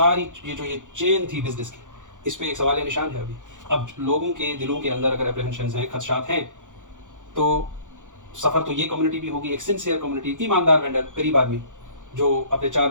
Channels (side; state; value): left; late; 0.87 ms